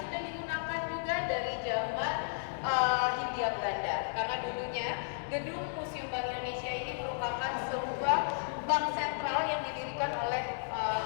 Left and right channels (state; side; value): silent; right; digital silence